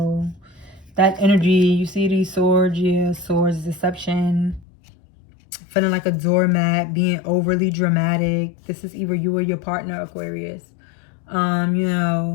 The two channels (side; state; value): right; drops out; at 4.7 s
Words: that energy. You see these swords, yeah, swords, deception, feeling like a doormat, being overly dramatic. This is either you or your partner, Aquarius. You